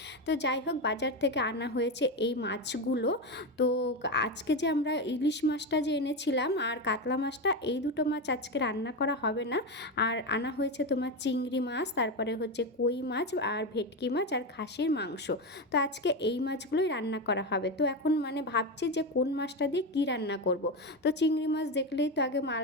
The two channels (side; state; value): both; normal; correlation 0.15